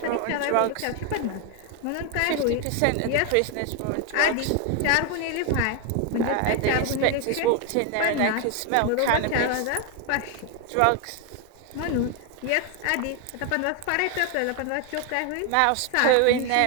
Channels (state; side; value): different; both; correlation 0.01